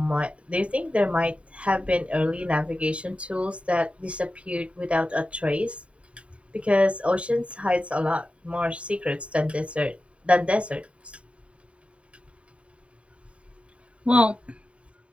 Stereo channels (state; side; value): late; left; 0.062 ms